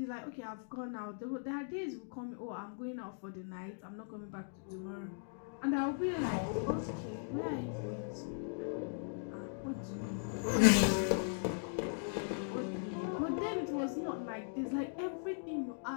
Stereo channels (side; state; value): right; silent; digital silence